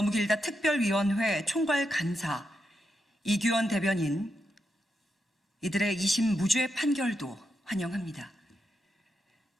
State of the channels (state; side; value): normal; both; correlation 0.84